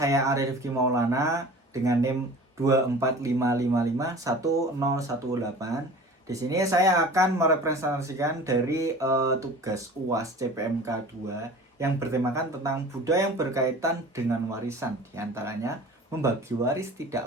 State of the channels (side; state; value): both; normal; correlation 0.41